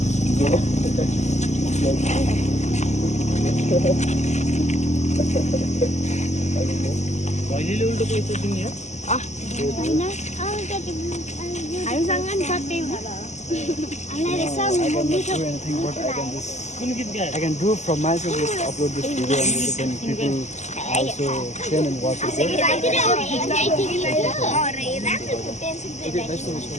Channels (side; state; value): right; late; 0.33 ms